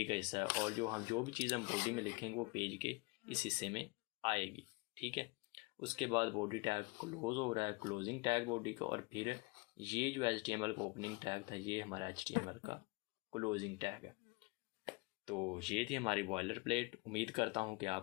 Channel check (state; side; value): quieter; right; 27.0 dB